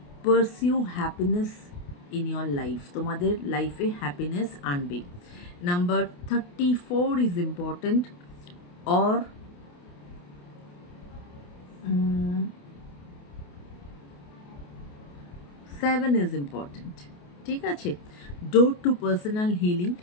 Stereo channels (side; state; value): right; late; 28 ms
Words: pursue happiness in your life. তোমাদের লাইফে হ্যাপিনেস আনবে। Number 34 is important, or 7 is important. ঠিক আছে, door to personal healing